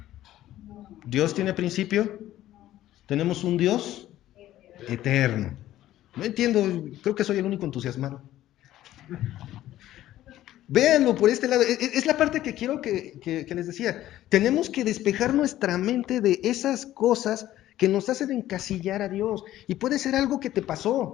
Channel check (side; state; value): right; quieter; 13.8 dB